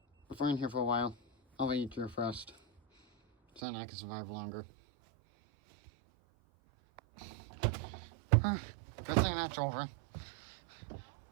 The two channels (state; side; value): drops out; left; at 3.6 s